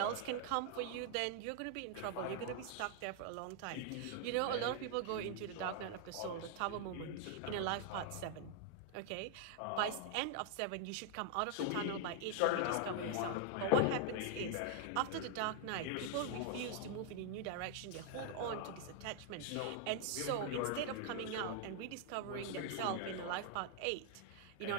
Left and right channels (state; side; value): different; both; correlation 0.00